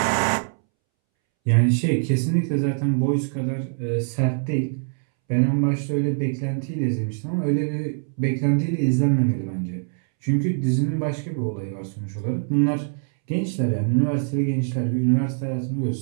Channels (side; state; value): left; silent; 63 dB below the other